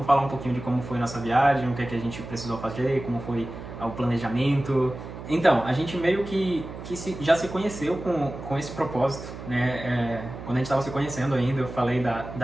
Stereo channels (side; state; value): right; noise; hum, 11 dB below the sound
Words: falar um pouquinho de como foi a nossa viagem, o que é que a gente precisou fazer, como foi o planejamento. Então, a gente meio que já se conheceu com esse propósito, né? Quando a gente estava se conhecendo ainda, eu falei